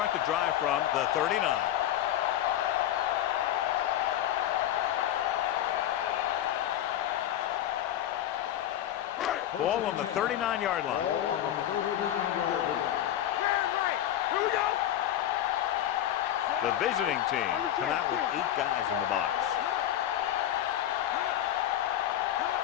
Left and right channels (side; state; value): right; quieter; 12.0 dB